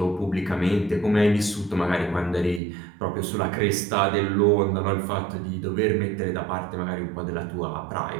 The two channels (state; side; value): drops out; left; at 2.6 s